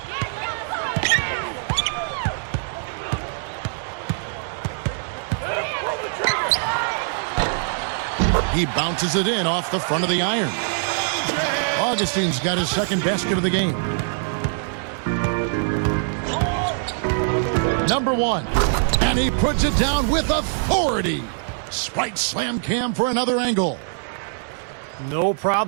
He bounces it in off the front of the iron. Augustine's got his second basket of the game. Number 1. And he puts it down with authority. Sprite slam cam for another angle. No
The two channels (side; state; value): left; silent; digital silence